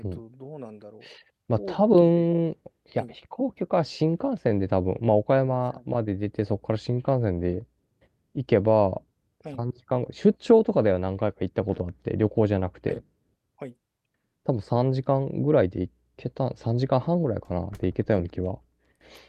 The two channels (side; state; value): both; identical; correlation 1.00